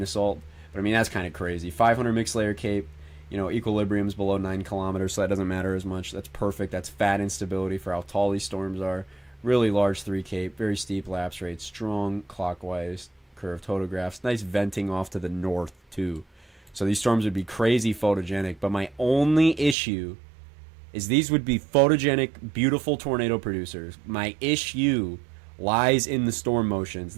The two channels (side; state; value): left; drops out; at 19.8 s